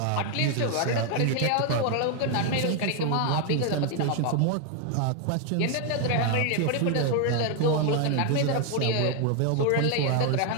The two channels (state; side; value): different; both; correlation 0.00